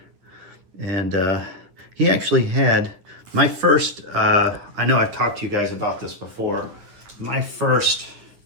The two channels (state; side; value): late; left; 9.8 ms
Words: and he actually had my first. I know I've talked to you guys about this before. My first